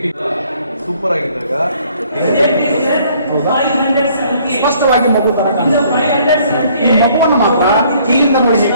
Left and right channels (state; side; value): inverted; both; correlation -0.61